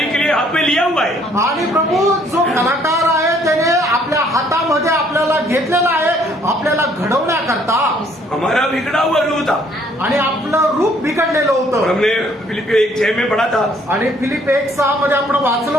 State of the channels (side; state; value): both; normal; correlation 0.63